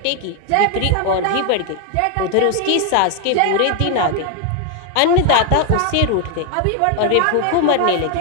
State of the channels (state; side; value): different; both; correlation 0.00